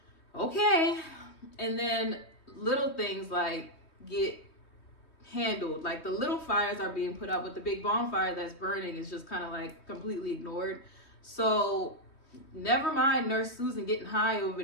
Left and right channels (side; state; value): right; late; 3.2 ms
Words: okay. And then little things like get handled. Like the little fires are being put out, but the big bonfire that's burning is just kind of like completely ignored. So never mind Nurse Susan getting high over